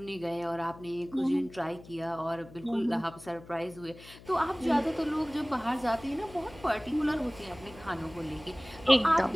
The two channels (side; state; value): left; noise; hum, 19 dB below the sound